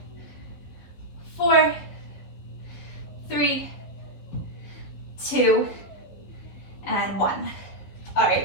4, 3, 2, and 1. All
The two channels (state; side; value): late; right; 11 ms